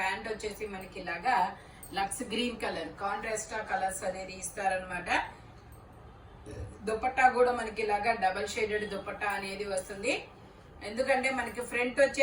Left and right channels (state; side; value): identical; both; correlation 1.00